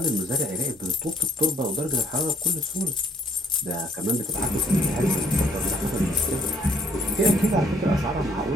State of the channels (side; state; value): both; normal; correlation 0.66